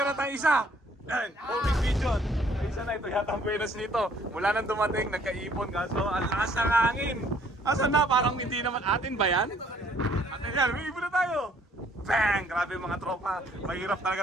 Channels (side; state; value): both; normal; correlation 0.61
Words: tayong isa. Yan, homing pigeon. Isa na ito yata ang buenas nito. Mula nang dumating, nagkaipon kaso ang lakas ng hangin. Asan na? Parang hindi naman atin ba yan? Atin yan, may ibon na tayo. Bang! Grabe mga tropa. Mahirap